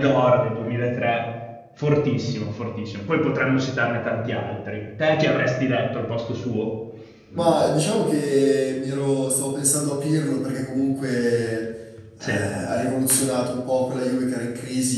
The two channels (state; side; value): identical; both; correlation 1.00